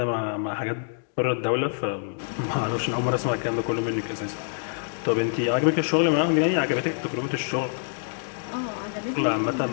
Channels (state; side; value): silent; right; digital silence